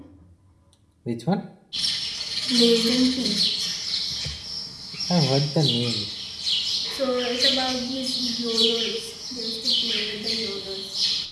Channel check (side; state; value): both; identical; correlation 1.00